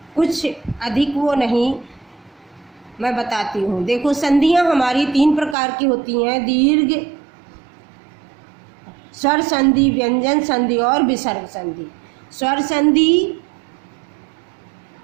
कुछ अधिक वो नहीं, मैं बताती हूँ। देखो, संधियाँ हमारी 3 प्रकार की होती हैं। दीर्घ, स्वर संधि, व्यंजन संधि और विसर्ग संधि। स्वर संधि,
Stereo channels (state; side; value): drops out; left; at 5.6 s